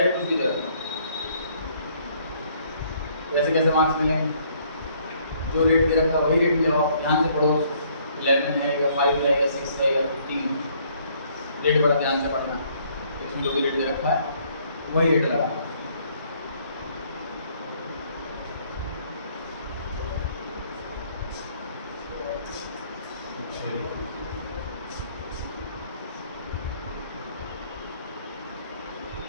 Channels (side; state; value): both; inverted; correlation -0.64